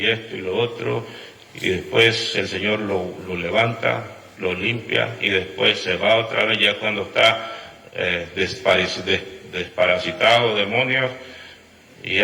esto y lo otro, y después el Señor lo levanta, lo limpia, y después se va otra vez ya cuando está desparasitado, demonios, y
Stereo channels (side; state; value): both; identical; correlation 1.00